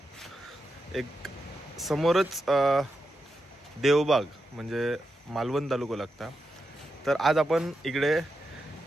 एक समोरच देवबाग म्हणजे मालवण तालुका लागता. तर आज आपण इकडे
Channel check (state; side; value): normal; both; correlation 0.87